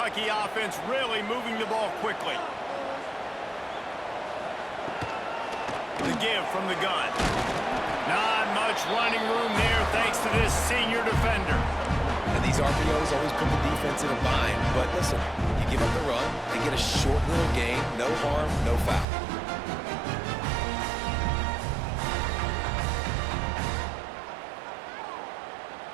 offense really moving the ball quickly. The give from the gun. Not much running room there thanks to this senior defender. And these RPOs always put the defense in a bind. But listen, you give up the run, they get a short little gain, no harm, no foul.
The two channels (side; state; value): left; drops out; at 19.1 s